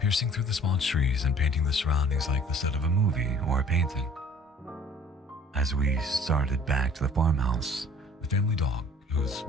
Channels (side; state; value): both; normal; correlation 0.51